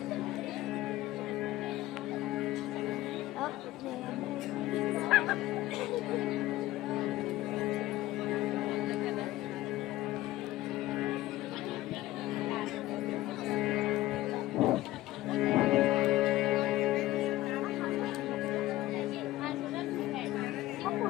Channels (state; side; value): quieter; right; 16.5 dB